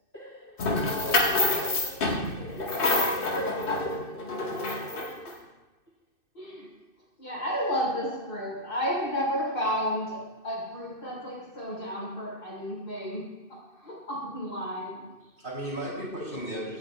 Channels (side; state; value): right; late; 2.6 ms